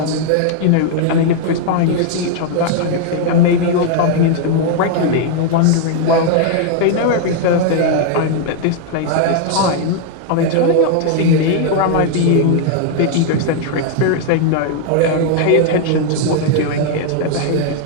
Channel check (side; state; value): both; different; correlation 0.00